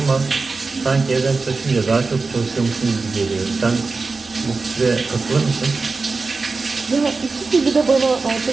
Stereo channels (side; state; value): left; quieter; 4.1 dB